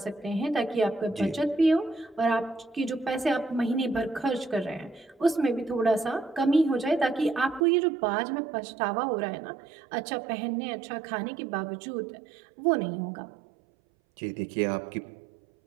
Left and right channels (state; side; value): drops out; left; at 7.7 s